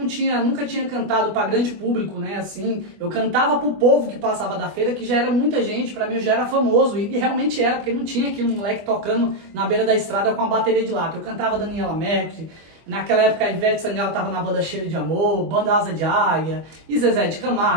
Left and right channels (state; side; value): late; left; 25 ms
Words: tinha cantado pra grande público, né, assim, eu cantava pro povo que passava da feira, que já era muita gente, pra mim eu já era famoso, e realmente era, porque não tinha aqui um moleque tocando na beira da estrada com a bateria de lata. Eu cantava Daniela Mercury, naquela época a Ivete Sangalo tava na banda Cheiro de Amor, banda Asa de Águia, e Zezé de